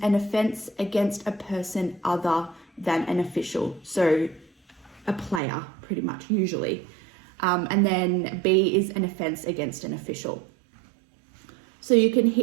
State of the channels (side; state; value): left; drops out; at 5.4 s